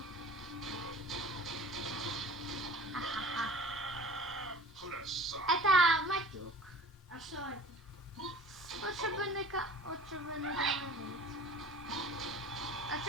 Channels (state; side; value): normal; both; correlation 0.43